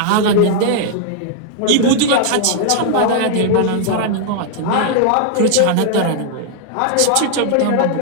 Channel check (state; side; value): different; both; correlation 0.00